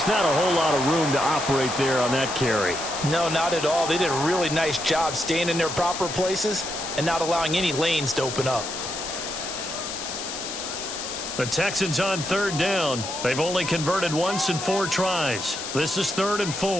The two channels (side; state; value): left; noise; hiss, 7 dB below the sound